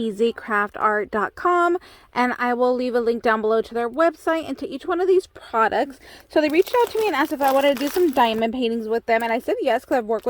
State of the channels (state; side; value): identical; both; correlation 1.00